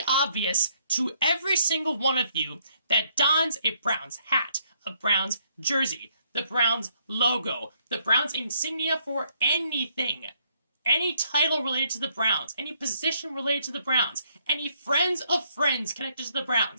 obvious to every single one of you that dons a Browns hat, a Browns jersey, the Browns logo, the Browns insignia for anything. Any title related to the Browns, any position related to the Browns, any friends of friends connected to the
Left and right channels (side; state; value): both; inverted; correlation -0.69